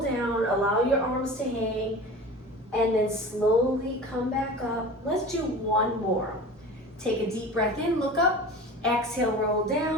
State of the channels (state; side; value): normal; both; correlation 0.36